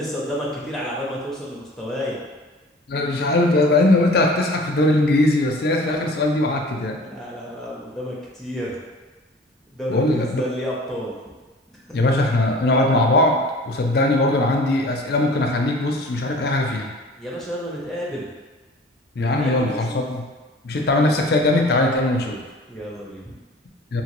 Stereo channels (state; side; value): normal; both; correlation 0.45